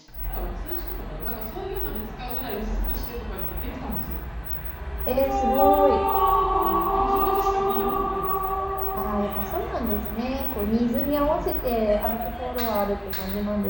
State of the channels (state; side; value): identical; both; correlation 1.00